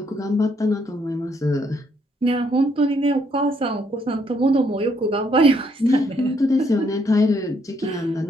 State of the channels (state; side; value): normal; both; correlation 0.71